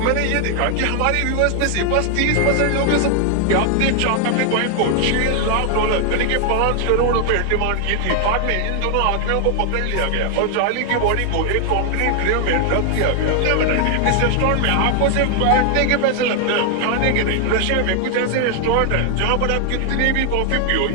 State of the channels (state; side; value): different; both; correlation 0.00